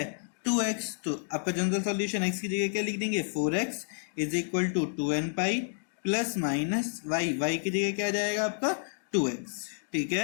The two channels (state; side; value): silent; right; digital silence